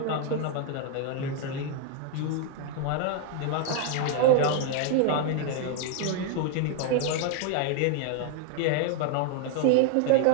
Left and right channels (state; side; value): different; both; correlation 0.00